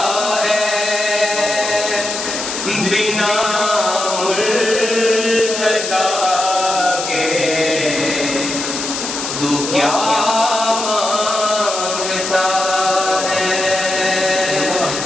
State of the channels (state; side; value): noise; left; hiss, 5 dB below the sound